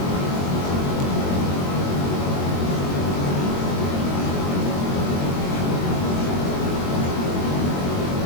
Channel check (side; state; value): right; late; 22 ms